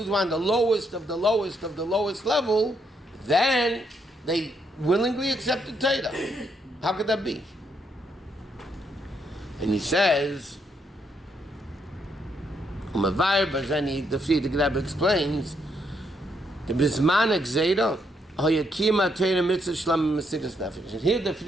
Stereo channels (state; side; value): normal; both; correlation 0.75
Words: were on the lowest of the lowest of the lowest level. Then they willingly accepted Torah. How could that be? And he says, the Rebbe explains, the Bisman Gzeira, Hayakima Torah Mitzvah Shlam Mesiras Nefesh. And here the